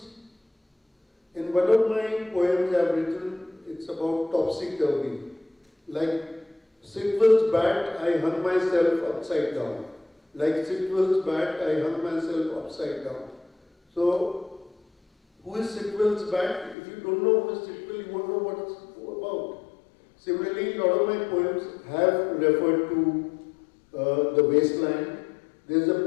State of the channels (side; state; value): right; drops out; at 16.8 s